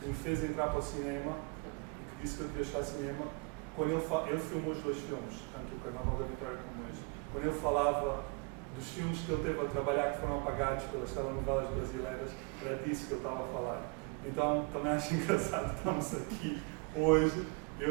me fez entrar para o cinema e que disse que eu devia estar no cinema, quando ele filmou os dois filmes, tanto o Carnaval da Vitória como este, quando ele falava dos filmes que ele teve a trabalhar que foram apagados pelas telenovelas brasileiras, era disso que ele estava a falar. Então, também acho engraçado estamos aqui hoje.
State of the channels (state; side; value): quieter; left; 30.7 dB